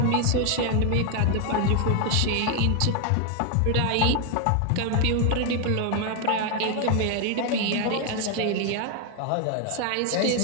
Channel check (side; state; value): both; different; correlation 0.01